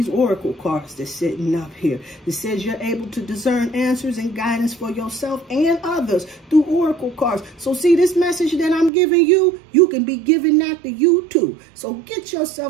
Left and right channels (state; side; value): drops out; left; at 8.9 s